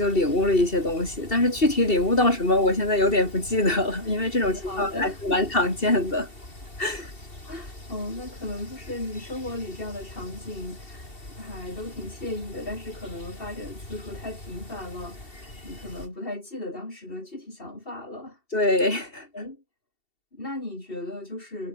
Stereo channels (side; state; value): right; late; 2.7 ms